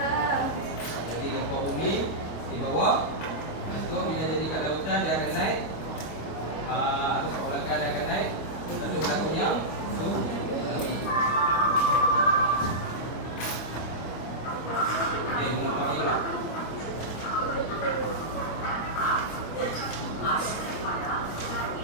Jadi gempa bumi di bawah. Itu bila jadi kat lautan dia akan naik, atas pergerakan dia akan naik untuk berlakunya tsunami. Okey, gunung berapi pula.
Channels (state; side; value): late; right; 26 ms